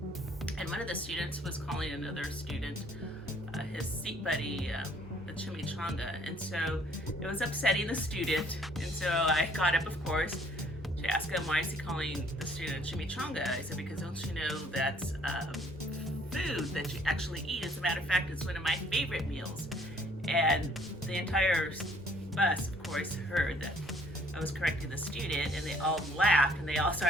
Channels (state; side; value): normal; both; correlation 0.60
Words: and one of the students was calling another student his seat buddy a chimichanga, and so it was upsetting the student, and so I got up, of course, to ask him, why is he calling the student chimichanga? I said, because don't you know that's food that you actually eat. As a matter of fact, it's one of my favorite meals. And the entire bus, of course, heard that I was correcting the student, and they all laughed, and they all